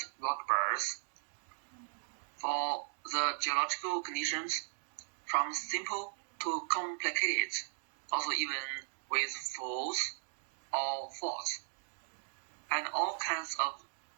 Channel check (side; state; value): left; silent; digital silence